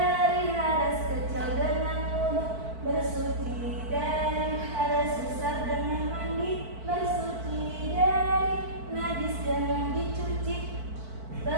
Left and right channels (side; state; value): left; late; 4.5 ms